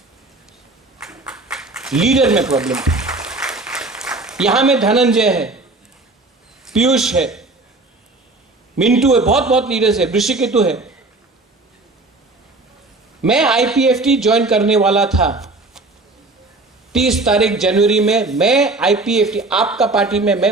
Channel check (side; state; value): left; quieter; 3.1 dB